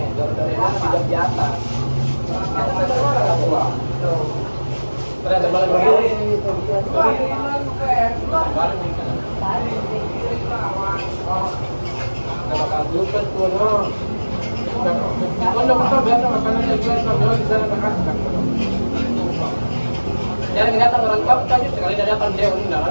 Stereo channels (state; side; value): inverted; both; correlation -1.00